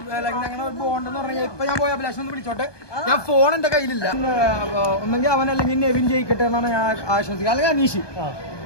ഞങ്ങളുടെ ബോണ്ടെന്ന് പറഞ്ഞാൽ ഇപ്പൊ ഞാൻ പോയ അഭിലാഷ് ഒന്ന് വിളിച്ചോട്ടെ. ഞാൻ ഫോൺ എന്റെ കയ്യിലില്ല. ഒന്നെങ്കിൽ അവൻ അല്ലെങ്കിൽ നെവിൻ ജയിക്കട്ടെ എന്നാണ് ഞാൻ ആശംസിക്കുക, അല്ലെങ്കിൽ അനീഷ്.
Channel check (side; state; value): right; late; 1.2 ms